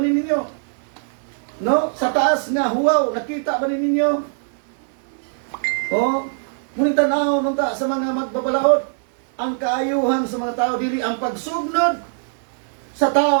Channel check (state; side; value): silent; left; 59 dB below the other